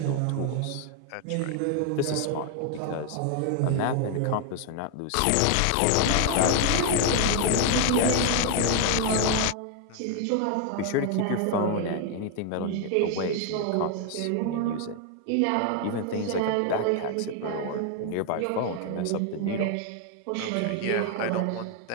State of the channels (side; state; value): both; different; correlation 0.01